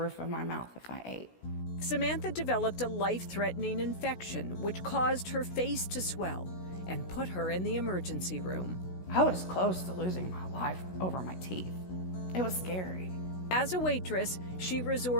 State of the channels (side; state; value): right; late; 16 ms